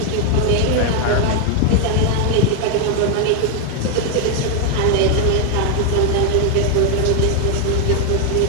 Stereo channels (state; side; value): different; both; correlation 0.00